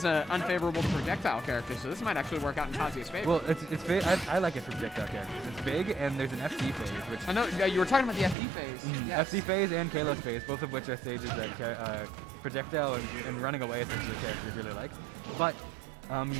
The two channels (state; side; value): drops out; left; at 8.3 s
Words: an unfavorable projectile character, so this might actually work out in Kazuya's favor. Well, it's big. I like it for projectile characters. It's big, and there's an FD phase, which I know you were talking about the FD phase. Yes. FD phase and Kalos phase, both of which are stages that projectile and running away essentially characters really like. But